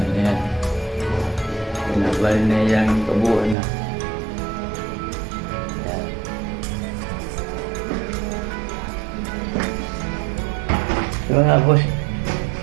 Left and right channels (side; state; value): left; drops out; at 3.6 s